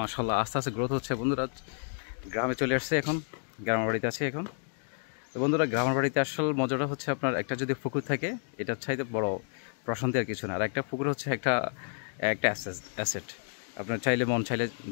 আস্তে আস্তে গ্রোথ হচ্ছে। বন্ধুরা গ্রামে চলে আসছে, এখন গ্রামের বাড়িতে আছে এখন। তো বন্ধুরা গ্রামের বাড়িতে আসল মজাটা হচ্ছে আপনার একটা যদি পুকুর থাকে এটার চাইতে বড় প্রশান্তি আর কিছু না। আর একটা পুকুর হচ্ছে একটা অ্যাসেট। আপনার চাইলে মন চাইলে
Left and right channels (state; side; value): silent; right; digital silence